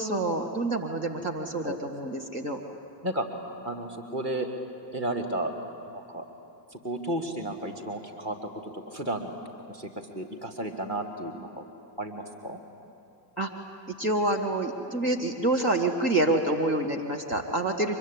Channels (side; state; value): right; late; 1.7 ms